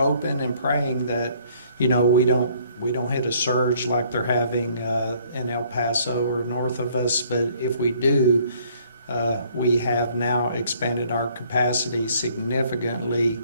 and praying that, we don't hit a surge like they're having in El Paso or north of us. But if we do, we have now expanded our capacity significantly,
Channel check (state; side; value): inverted; both; correlation -0.61